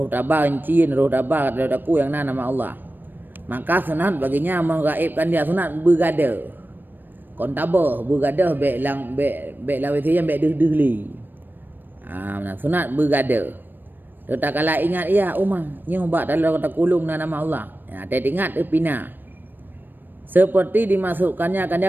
tabah encin, roh tabah kata aku yang nama Allah, maka sunat baginya menggaibkan dia, sunat bergada kon tabah bergada bek lang bek lawitian bek deh sunat bergada. Tak kala ingat ya umah nyoba dalam kata kulung nama Allah. Ya, dia ingat pina. Seperti dimasukkannya akan dia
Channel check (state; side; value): late; left; 0.093 ms